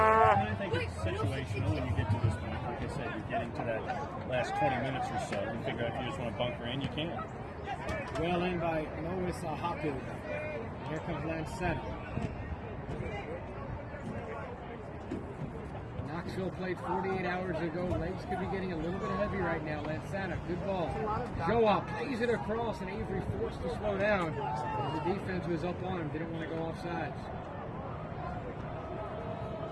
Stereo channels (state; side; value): identical; both; correlation 1.00